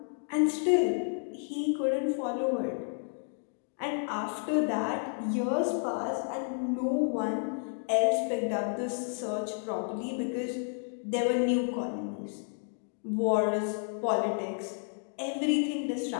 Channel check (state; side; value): silent; right; 57 dB below the other